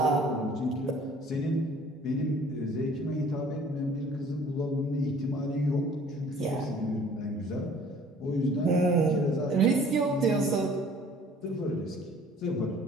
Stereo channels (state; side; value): normal; both; correlation 0.53